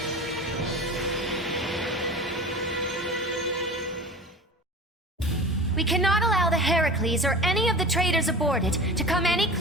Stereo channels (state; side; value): normal; both; correlation 0.35